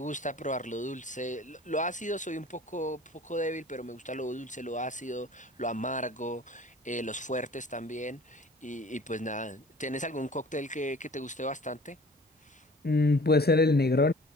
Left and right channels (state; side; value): normal; both; correlation 0.47